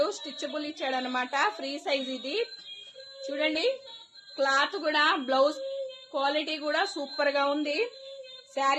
స్టిచబుల్ ఇచ్చాడు అనమాట. ఫ్రీ సైజ్ ఇది. చూడండి క్లాత్ కూడా, బ్లౌజ్ క్వాలిటీ కూడా సూపర్ గా ఉంది.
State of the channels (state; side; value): identical; both; correlation 1.00